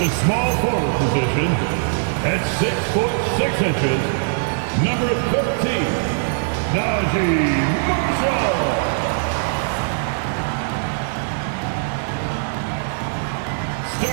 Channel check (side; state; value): left; silent; digital silence